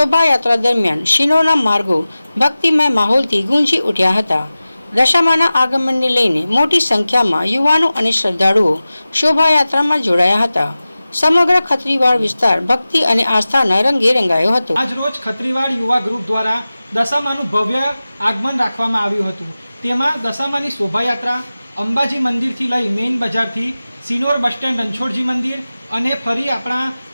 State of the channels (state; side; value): inverted; both; correlation -0.96